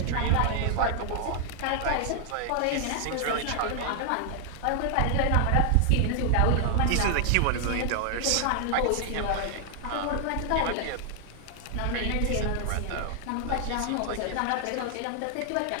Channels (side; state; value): both; different; correlation 0.00